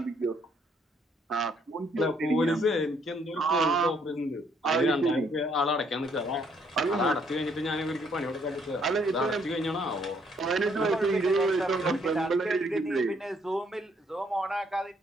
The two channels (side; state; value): both; normal; correlation 0.68